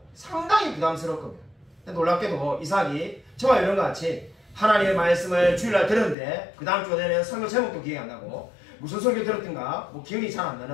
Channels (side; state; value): right; drops out; at 6.2 s